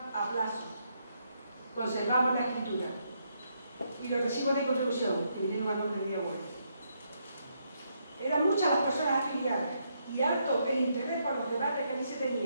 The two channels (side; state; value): both; inverted; correlation -0.77